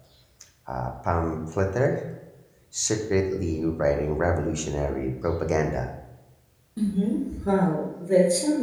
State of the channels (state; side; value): identical; both; correlation 1.00